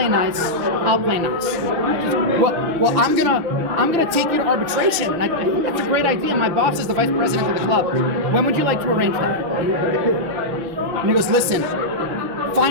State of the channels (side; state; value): left; late; 6.2 ms